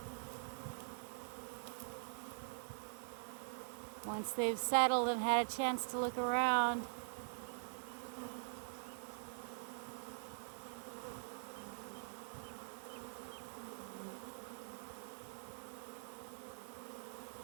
Once they've settled and had a chance to look around.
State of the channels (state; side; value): silent; left; digital silence